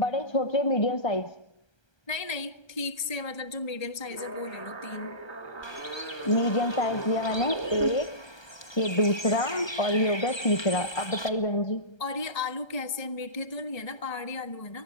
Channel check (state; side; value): late; right; 1.3 ms